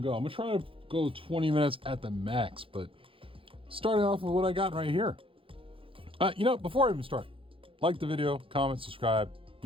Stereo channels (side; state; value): left; late; 0.26 ms